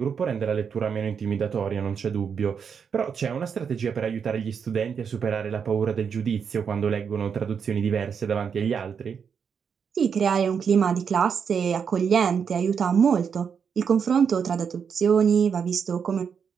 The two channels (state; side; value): quieter; left; 6.7 dB